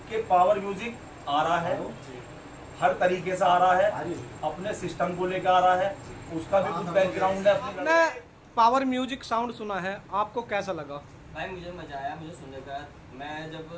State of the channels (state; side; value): identical; both; correlation 1.00